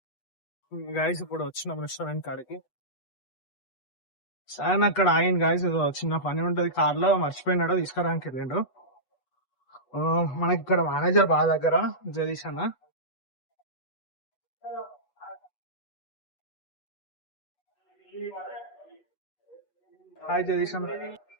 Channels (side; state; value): right; late; 8.1 ms